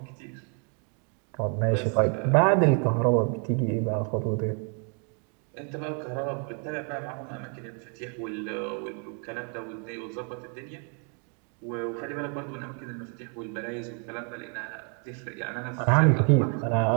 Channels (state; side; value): quieter; left; 39.8 dB